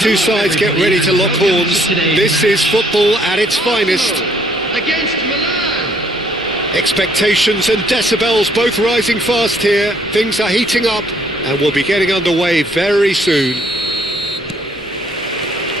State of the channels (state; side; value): normal; both; correlation 0.65